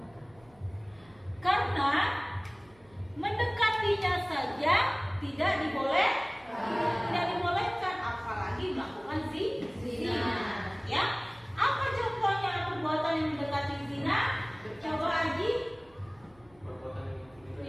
Karena mendekatinya saja tidak dibolehkan, apalagi melakukan zina. Ya, apa contohnya perbuatan yang mendekati zina? Coba Aji.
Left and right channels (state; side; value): noise; right; hum, 29 dB below the sound